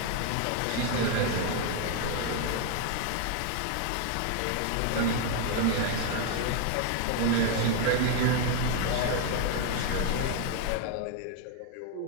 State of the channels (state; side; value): different; both; correlation 0.01